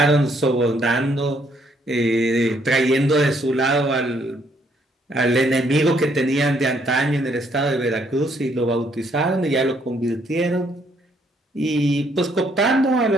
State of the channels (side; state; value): both; normal; correlation 0.69